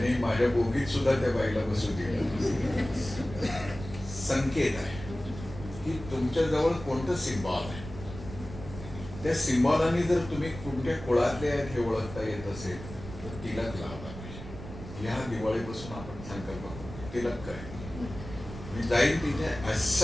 माझ्या बोगीत सुद्धा त्या बाईला बसू दिलं. संकेत आहे की तुमच्या जवळ कोणतं सिम्बॉल आहे. त्या सिम्बॉलाने जर तुम्ही कोणत्या कुळातले आहेत हे ओळखता येत असेल तर तिलक लावला पाहिजे. ह्या दिवाळीपासून आपण संकल्प करू तिलक करायचं. मी जाईन तिथे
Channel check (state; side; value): noise; right; rumble, 12 dB below the sound